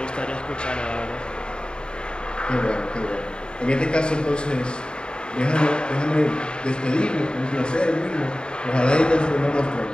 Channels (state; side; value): late; right; 0.050 ms